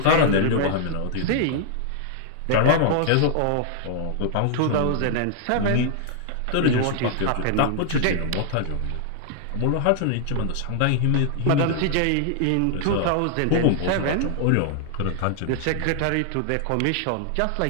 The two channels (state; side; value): different; both; correlation 0.00